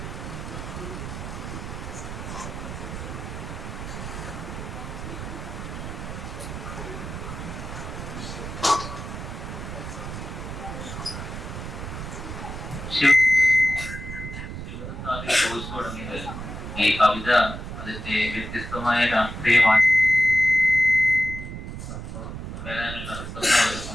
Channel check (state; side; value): noise; right; rumble, 8 dB below the sound